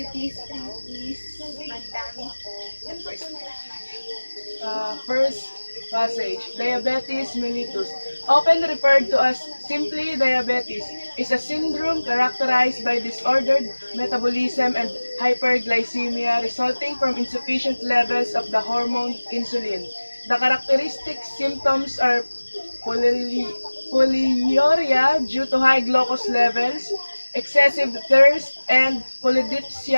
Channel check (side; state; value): both; inverted; correlation -1.00